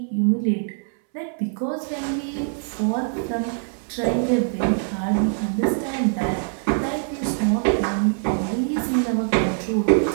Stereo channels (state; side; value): silent; left; 62 dB below the other